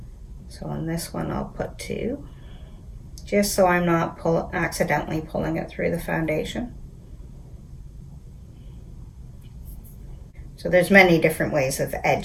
So on this one, I'll put 2, just so I'm not accidentally pulling it through the foundation. So there's many different ways of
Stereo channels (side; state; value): both; identical; correlation 1.00